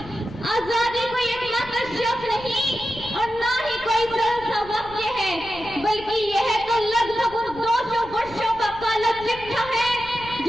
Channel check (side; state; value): left; noise; rumble, 18 dB below the sound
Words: कोई एकमात्र शब्द नहीं और ना ही कोई सरल सा वाक्य है, बल्कि यह तो लगभग 200 वर्षों का काला चिट्ठा है